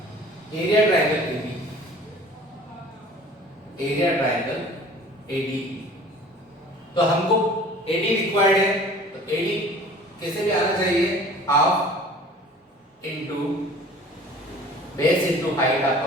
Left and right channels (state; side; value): normal; both; correlation 0.47